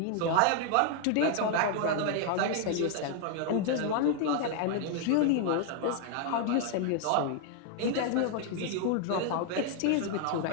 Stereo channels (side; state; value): both; different; correlation 0.00